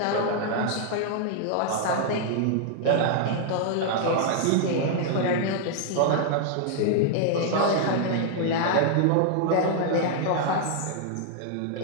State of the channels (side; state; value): both; different; correlation -0.01